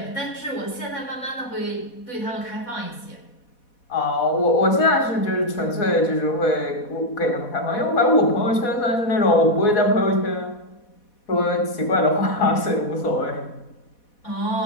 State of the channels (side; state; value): right; late; 4.1 ms